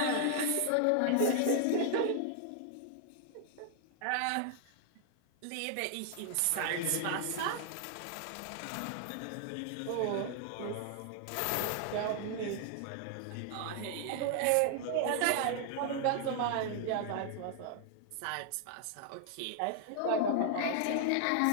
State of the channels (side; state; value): both; different; correlation 0.00